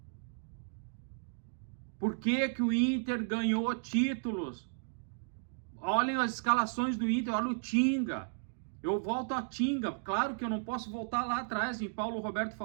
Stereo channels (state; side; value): silent; left; digital silence